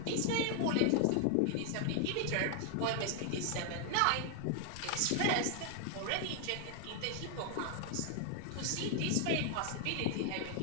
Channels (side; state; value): both; different; correlation 0.00